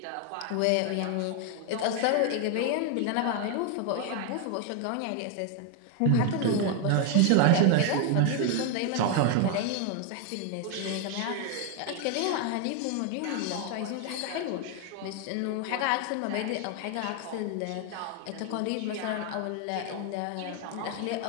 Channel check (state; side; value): different; both; correlation 0.01